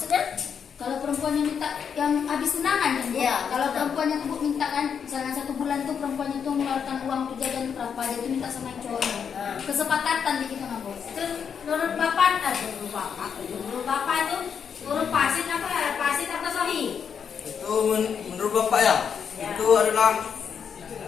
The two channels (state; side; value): quieter; right; 7.2 dB